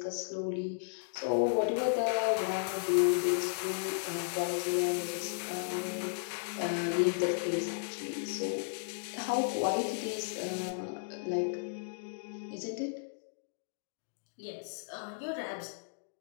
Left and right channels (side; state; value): right; silent; digital silence